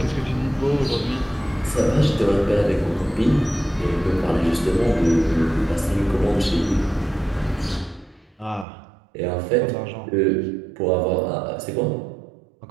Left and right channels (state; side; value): drops out; left; at 8.7 s